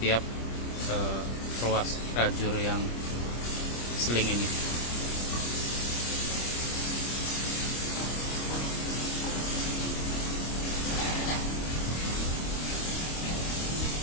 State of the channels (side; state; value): right; late; 25 ms